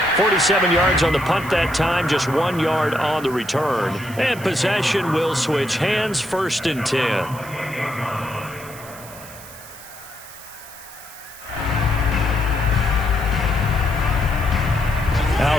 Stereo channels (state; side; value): noise; right; hiss, 17 dB below the sound